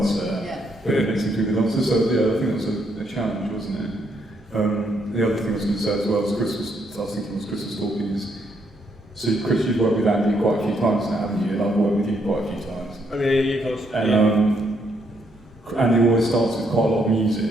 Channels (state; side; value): normal; both; correlation 0.74